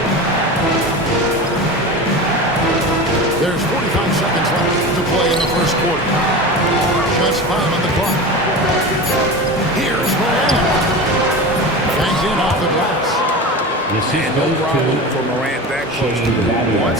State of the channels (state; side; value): normal; both; correlation 0.29